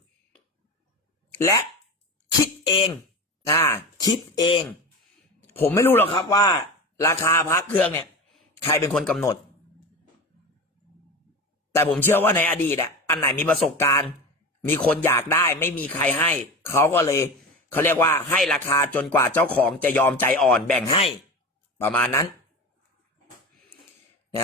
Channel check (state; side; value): normal; both; correlation 0.28